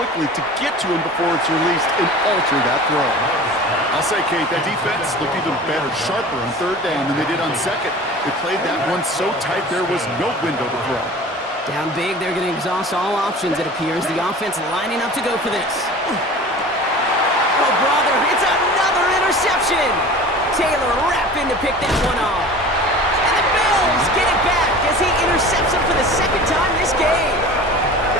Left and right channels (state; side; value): normal; both; correlation 0.39